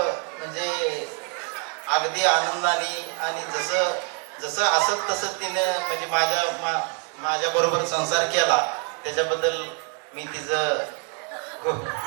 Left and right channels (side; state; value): left; quieter; 39.3 dB